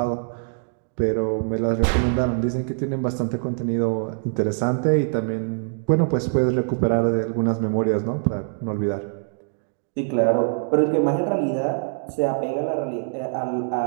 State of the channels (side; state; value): left; silent; digital silence